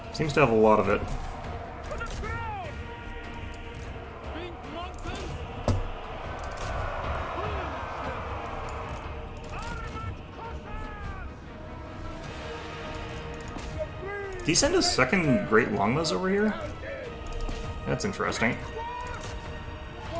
Seems to have a lot of it. To the ground! Pink mountain! Did he send his second Great Longbows over here? That's interesting.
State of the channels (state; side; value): identical; both; correlation 1.00